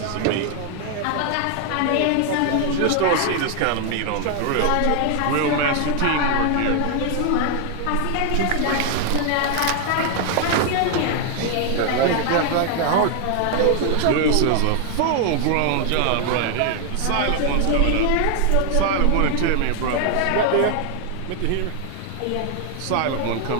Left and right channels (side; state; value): both; different; correlation 0.00